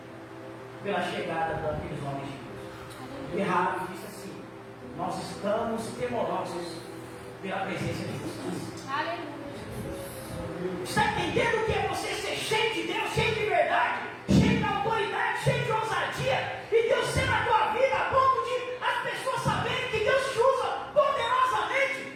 pela chegada daqueles homens de Deus. E Rabi disse assim: nós estamos temorosos pela presença de vocês. Aleluia. Está entendendo o que é você ser cheio de Deus, cheio de verdade, cheio de autoridade, cheio de ousadia, e Deus ser na tua vida a ponto de as pessoas saberem que Deus te usa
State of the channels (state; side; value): identical; both; correlation 1.00